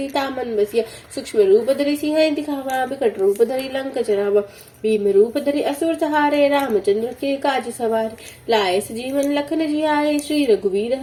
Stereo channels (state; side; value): identical; both; correlation 1.00